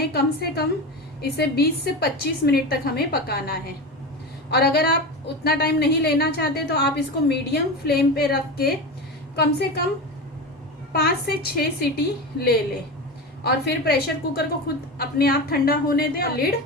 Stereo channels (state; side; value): normal; both; correlation 0.23